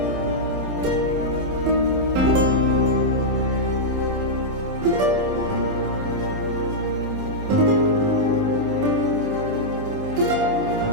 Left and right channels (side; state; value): left; late; 27 ms